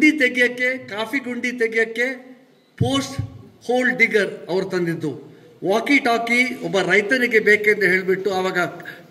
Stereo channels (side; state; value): both; identical; correlation 1.00